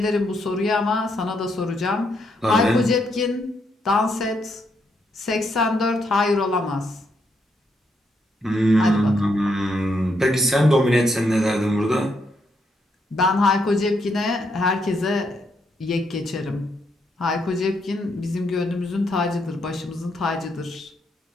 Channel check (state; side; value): normal; both; correlation 0.77